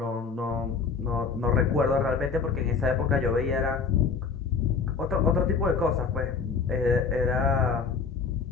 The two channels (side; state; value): right; quieter; 5.3 dB